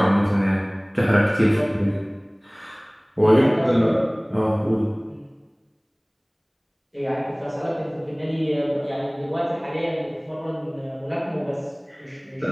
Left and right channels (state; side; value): identical; both; correlation 1.00